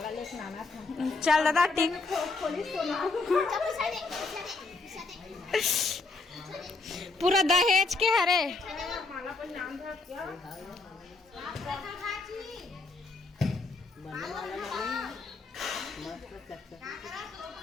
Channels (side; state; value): right; quieter; 3.8 dB